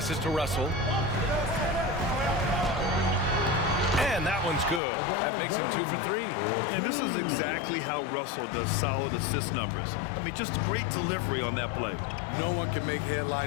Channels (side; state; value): right; drops out; at 4.8 s